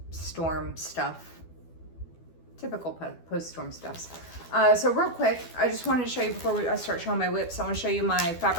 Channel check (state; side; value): late; right; 12 ms